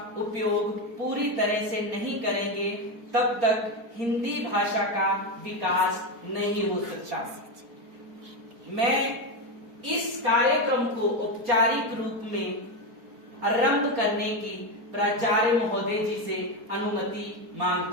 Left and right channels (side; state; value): left; late; 4.3 ms